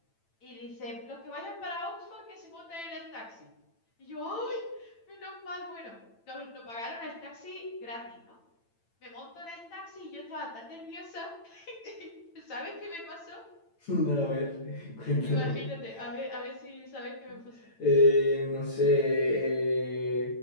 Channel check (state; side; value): late; right; 8.9 ms